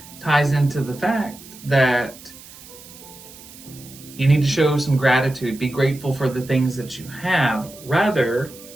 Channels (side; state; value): right; noise; hiss, 19 dB below the sound